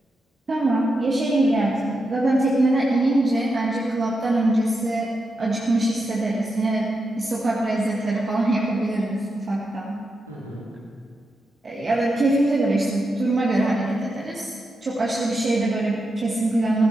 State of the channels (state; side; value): normal; both; correlation 0.86